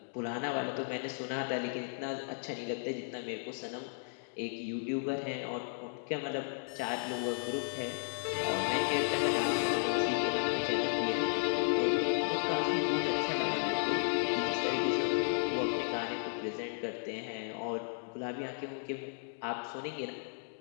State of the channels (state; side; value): silent; right; digital silence